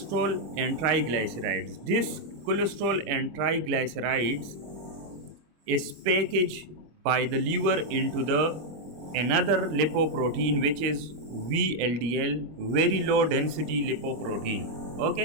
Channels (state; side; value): late; left; 25 ms